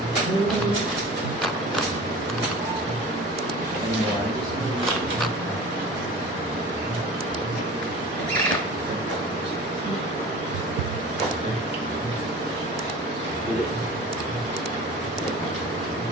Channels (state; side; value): normal; both; correlation 0.39